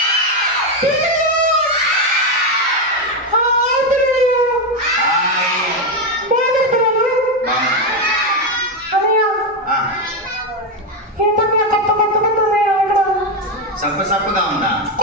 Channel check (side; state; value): both; normal; correlation 0.08